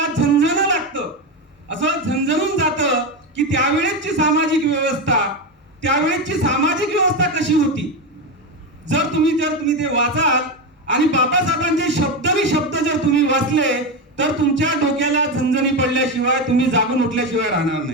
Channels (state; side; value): normal; both; correlation 0.14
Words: झणझणं लागतं, असं झणझणून जातं की त्यावेळेची सामाजिक व्यवस्था कशी होती. जर तुम्ही ते वाचाल आणि बाबासाहेबांचे शब्द जर तुम्ही वाचले, तर तुमच्या डोक्याला झणझणी पडल्याशिवाय, तुम्ही जागून उठल्याशिवाय राहणार